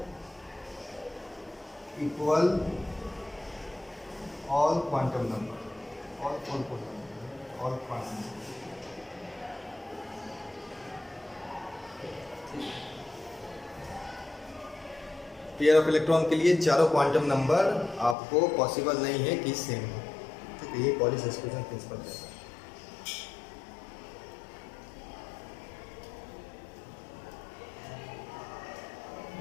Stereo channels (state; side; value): drops out; right; at 18.2 s